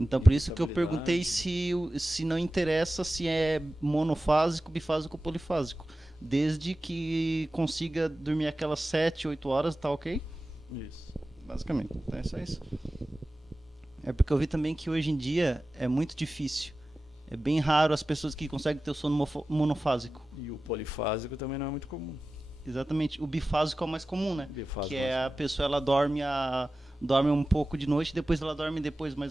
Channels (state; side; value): normal; both; correlation 0.95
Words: então por isso que eu perguntei se não interessa se é monofásico, bifásico ou polifásico. Desde que consiga dormir aquelas 7, 8 horas, tá ok? Isso. Basicamente, então é só isso. É porque eu vi também que hoje em dia é muito difícil. É bem raro as pessoas que conseguem ter o sono monofásico. E o polifásico também não é muito comum. Exatamente. O bifásico é o mais comum, né? Bifásico, que é a pessoa, ela dorme um pouco de noite, depois ela dorme